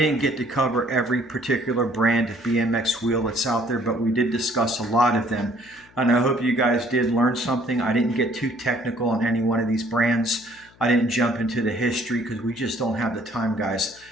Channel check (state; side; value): noise; left; hum, 28 dB below the sound